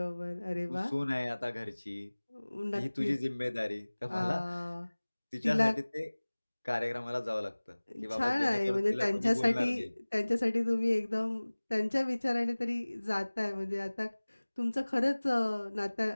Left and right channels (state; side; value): inverted; both; correlation -1.00